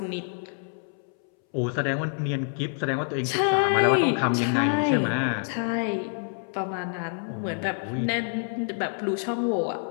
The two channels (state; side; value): silent; right; 60 dB below the other